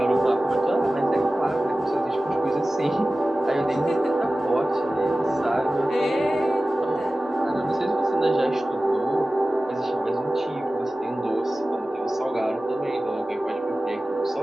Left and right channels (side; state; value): both; normal; correlation 0.96